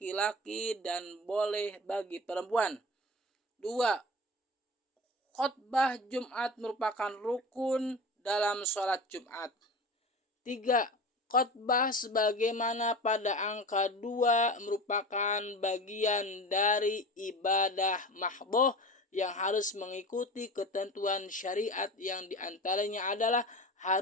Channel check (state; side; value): normal; both; correlation 0.32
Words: dan boleh bagi perempuan. 2. Khutbah Jumat merupakan rukun dalam sholat Jumat. 3. Khutbah sebagaimana pada angka 2 merupakan bagian dari ibadah mahdhah yang harus mengikuti ketentuan syariat yang diantaranya adalah